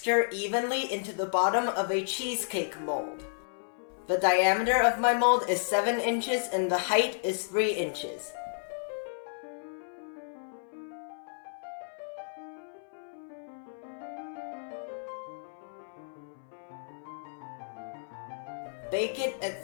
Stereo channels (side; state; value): right; silent; 56 dB below the other